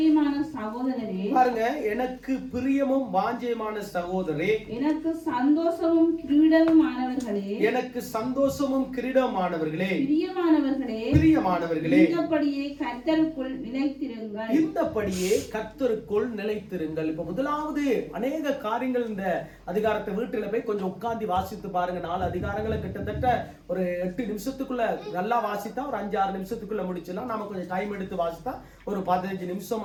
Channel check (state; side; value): identical; both; correlation 1.00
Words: சகோதரரே, பாருங்க, எனக்கு பிரியமும் வாஞ்சையுமான சகோதரரே, எனக்கு சந்தோஷமும் கிரீடமுமானவர்களே, எனக்கு சந்தோஷமும் கிரீடமானவர்களே, பிரியமானவர்களே, பிரியமானவர்களே, இந்தபடியே கர்த்தருக்குள் நிலைத்திருங்கள், இந்தபடியே கர்த்தருக்குள் நிலைத்திருங்கள். இப்ப முதலாவது அநேக காரியங்கள் இந்த அதிகாரத்தை வீட்டில போய் கொஞ்சம் உட்கார்ந்து வாசித்து பாருங்க. 4 அதிகாரங்களை கிட்டத்தட்ட ஒரு 8 நிமிஷத்துக்குள்ள நல்லா வாசித்தா ஒரு 5-6 நிமிஷத்துக்குள்ள முடிச்சலாம். நாம கொஞ்சம் டைம் எடுத்து வாசித்தா ஒரு 15